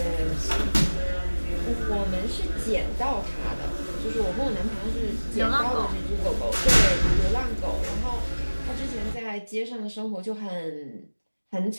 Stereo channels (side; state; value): both; inverted; correlation -1.00